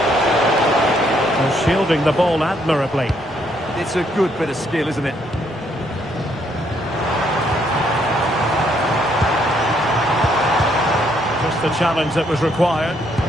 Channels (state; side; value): normal; both; correlation 0.71